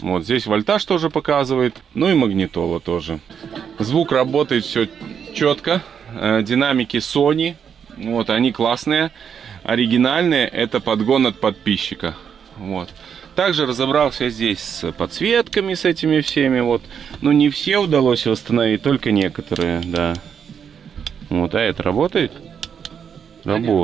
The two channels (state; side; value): quieter; left; 7.5 dB